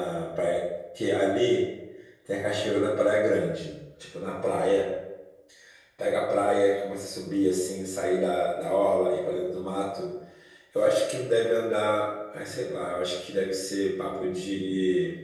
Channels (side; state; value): both; identical; correlation 1.00